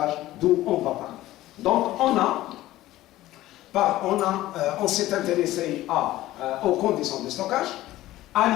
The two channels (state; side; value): quieter; right; 15.8 dB